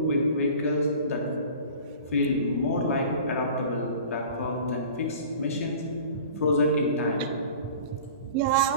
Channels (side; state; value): both; inverted; correlation -0.42